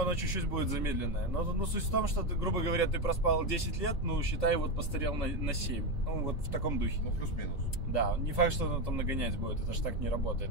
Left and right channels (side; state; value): right; late; 3.7 ms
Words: чуть-чуть будет замедленное. Но суть в том, что, ты, грубо говоря, ты проспал 10 лет, ну, считай, вот постарел на 7. Ну, вот в таком духе. Ну, плюс-минус. Да, не факт, что оно там нагонять будет. Это ж так не работает,